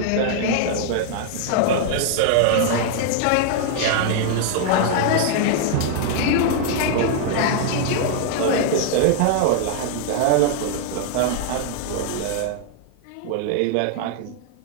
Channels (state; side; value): different; both; correlation 0.00